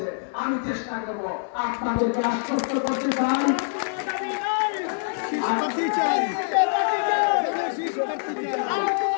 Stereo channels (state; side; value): silent; right; 55 dB below the other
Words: আমি চেষ্টা করব। আপনাদেরকে আশ্বস্ত করতে চাই